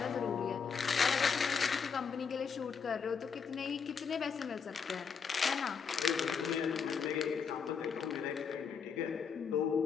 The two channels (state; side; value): quieter; right; 6.1 dB